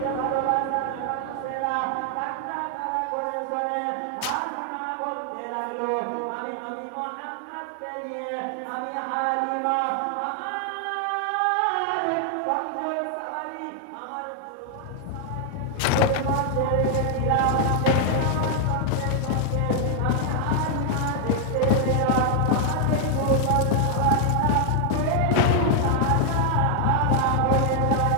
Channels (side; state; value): both; different; correlation 0.00